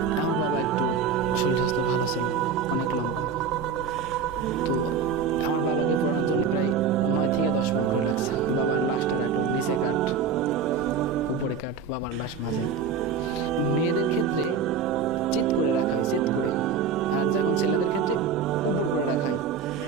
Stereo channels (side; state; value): left; quieter; 5.8 dB